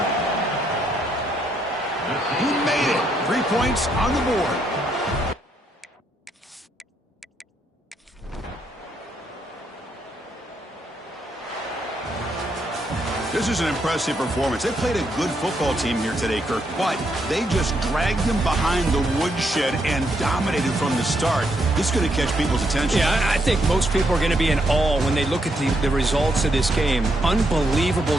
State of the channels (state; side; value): normal; both; correlation 0.76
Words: He made it. 3 points on the board. This is an impressive performance. They played a good football team here today, Kirk, but they just dragged them behind the woodshed and dominated from the start. This is going to catch people's attention. Yeah, I think most people are going to be in awe when they look at the results of this game.